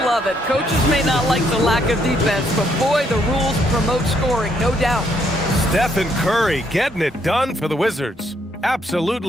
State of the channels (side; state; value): both; normal; correlation 0.72